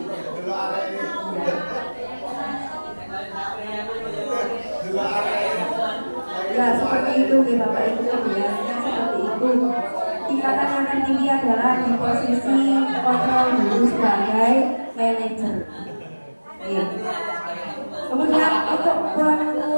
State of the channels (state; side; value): inverted; both; correlation -1.00